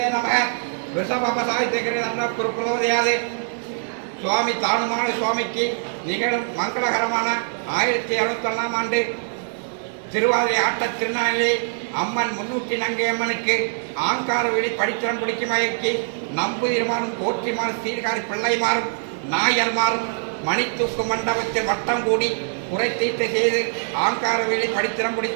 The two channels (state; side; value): silent; left; digital silence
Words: நமக ரிஷபசாய்த்திகிற குருகுலோதயாது சுவாமி தானுமான சுவாமிக்கு நிகழும் மங்களகரமான 1761 ஆண்டு திருவாதிரை ஆட்ட திருநாளிலே அம்மன் முன்னூற்றி நங்கை அம்மனுக்கு ஆங்கார வெளி படித்திரம் பிடிக்கும் வகைக்கு நம்புதிருமாறும் போற்றிமாறும் சீர்காரி பிள்ளைமாறும் நாயர்மாறும் மணித்தூக்கு மண்டபத்தில் வட்டம் கூடி குறை தீர்த்து செய்து ஆங்கார வெளி படித்திரம்